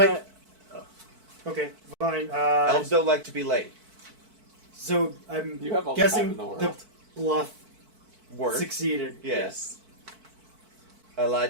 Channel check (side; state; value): left; late; 4.5 ms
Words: okay, fine. Elves don't like to be late. So I'm You have all the time guessing in the world. the bluff Work. succeeded. Yes. I